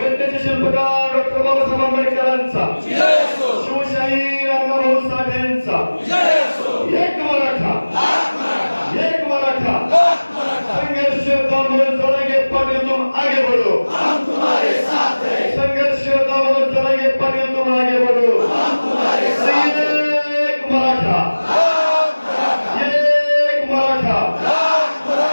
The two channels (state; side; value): inverted; both; correlation -1.00